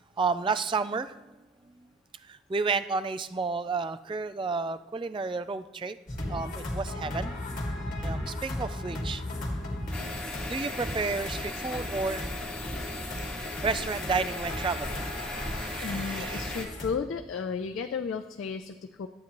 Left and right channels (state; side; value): normal; both; correlation 0.47